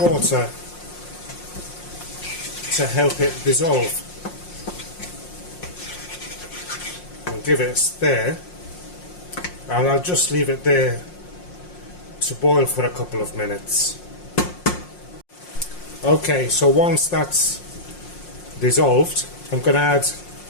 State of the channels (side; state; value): right; late; 5.6 ms